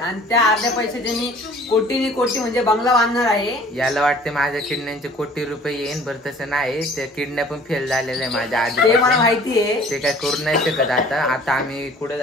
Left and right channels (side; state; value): both; normal; correlation 0.51